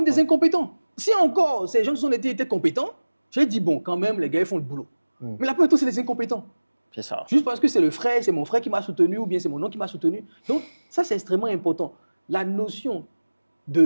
des incompétents. Si encore ces gens de son ethnie étaient compétents, j'ai dit, bon, quand même, les gars, ils font le boulot. Mais la plupart, c'est des incompétents. C'est ça. Juste parce que c'est le frère, c'est mon frère qui m'a soutenu, ou bien c'est mon oncle qui m'a soutenu. Donc, ça, c'est extrêmement important. La notion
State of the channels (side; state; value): both; inverted; correlation -1.00